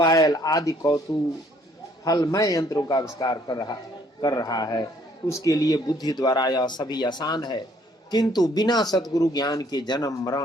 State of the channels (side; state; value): both; normal; correlation 0.63